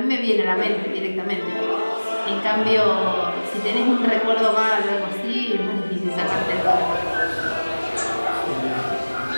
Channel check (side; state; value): both; inverted; correlation -1.00